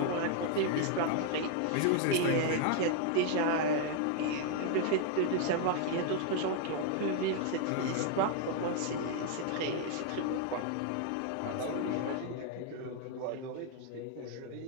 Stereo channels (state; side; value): different; both; correlation 0.00